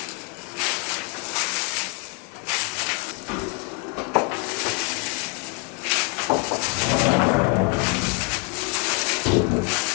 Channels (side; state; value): right; quieter; 34.4 dB